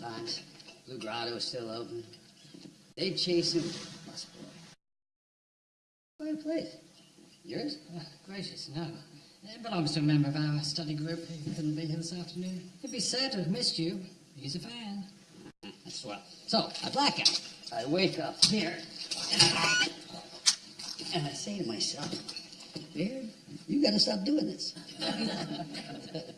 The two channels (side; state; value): both; identical; correlation 1.00